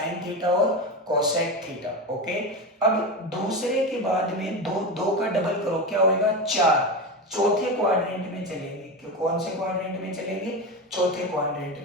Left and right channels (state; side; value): normal; both; correlation 0.19